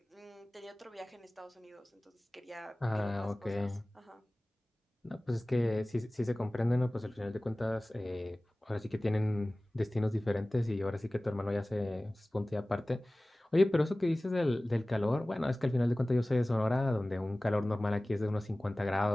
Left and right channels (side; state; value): both; normal; correlation 0.98